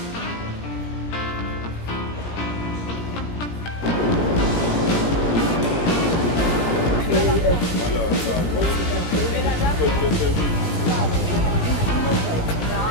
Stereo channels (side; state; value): right; late; 17 ms